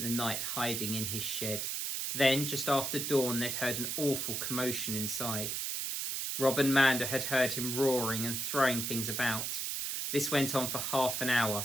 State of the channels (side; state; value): right; noise; hiss, 2 dB below the sound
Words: the night hiding in his shed. Then, just after dawn, they'd heard an awful commotion inside. Rob and Manda had heard him roaring and throwing things about. This went on for half an